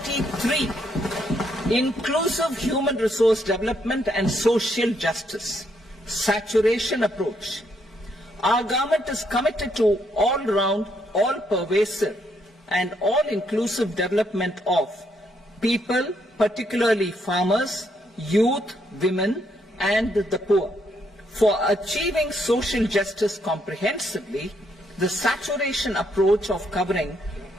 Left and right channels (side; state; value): both; normal; correlation 0.74